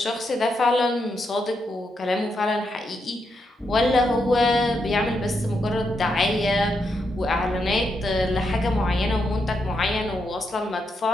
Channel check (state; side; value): normal; both; correlation 0.82